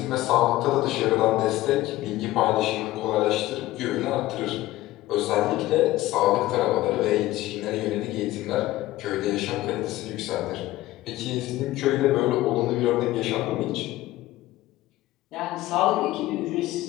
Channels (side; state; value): right; quieter; 16.7 dB